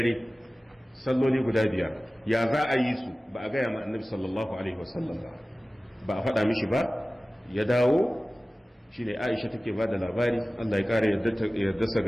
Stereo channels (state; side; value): normal; both; correlation 0.97